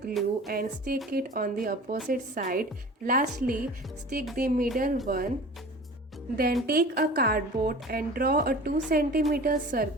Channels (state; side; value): normal; both; correlation 0.40